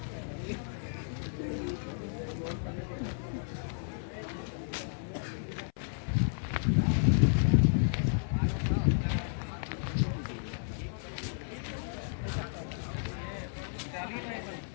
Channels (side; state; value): right; silent; 56 dB below the other